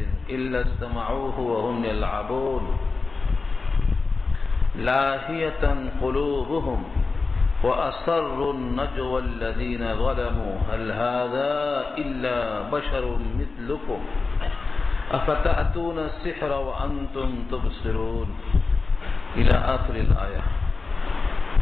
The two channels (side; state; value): right; quieter; 4.0 dB